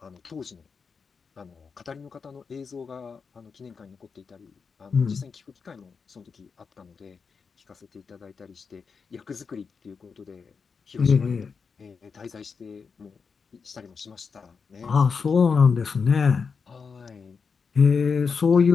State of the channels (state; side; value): quieter; right; 5.5 dB